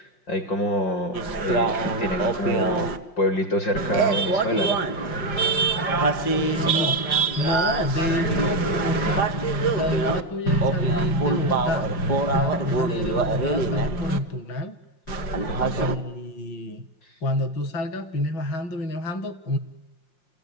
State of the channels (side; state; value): right; late; 5.6 ms